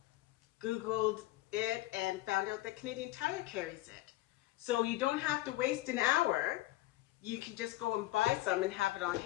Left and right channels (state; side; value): quieter; right; 16.9 dB